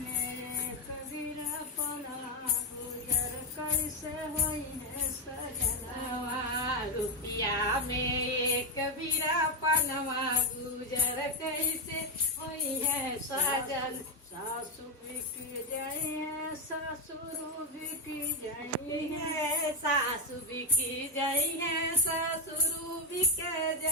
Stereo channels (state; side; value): normal; both; correlation 0.05